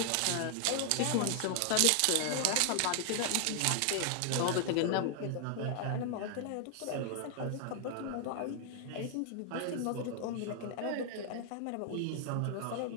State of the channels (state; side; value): different; both; correlation 0.00